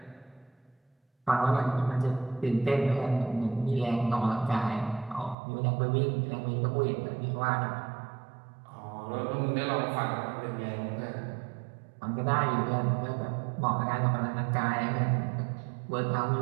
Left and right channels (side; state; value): left; drops out; at 5.4 s